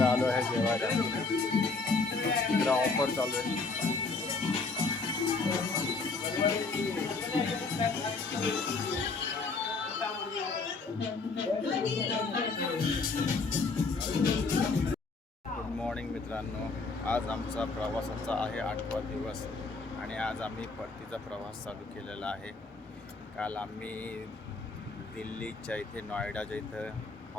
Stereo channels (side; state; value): right; quieter; 4.0 dB